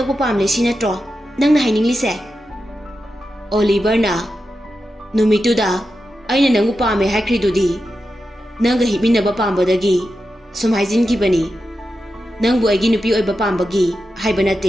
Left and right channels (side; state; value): both; normal; correlation 0.90